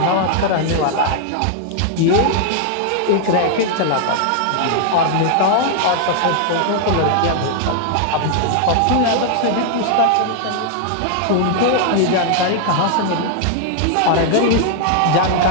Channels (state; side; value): different; both; correlation 0.00